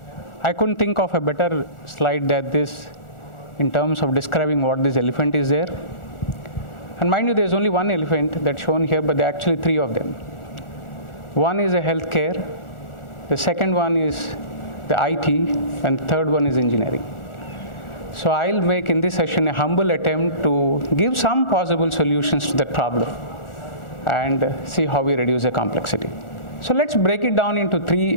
I couldn't think of a better slide than this in terms of describing what this elephant is there. And mind you, there's only one elephant that's shown here, but there are actually three of them. One is a healthcare, the second one is the IT, and the third one is engineering. So I'll make in this session a humble attempt to give some possible solutions to that problem and see how we reduce the complexity. So let's break it down into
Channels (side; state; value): right; late; 1.4 ms